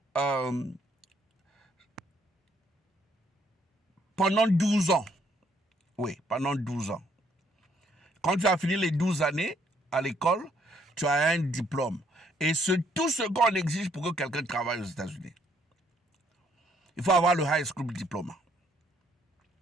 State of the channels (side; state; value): both; normal; correlation 0.68